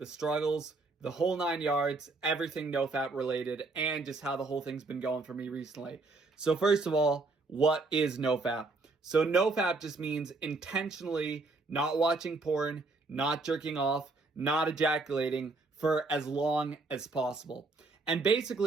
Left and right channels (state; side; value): quieter; left; 3.6 dB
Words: struggles, the whole 9 yards, everything No-Fap related, and just how the whole thing's been going for me recently. So first of all, what is No-Fap? So No-Fap just means intentionally not watching porn, not jerking off, not ejaculating for as long as possible. And